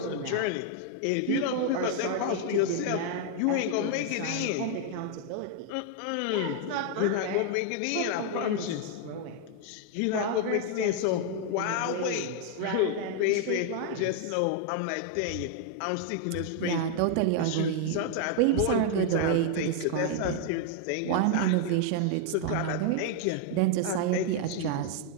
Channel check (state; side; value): different; both; correlation 0.00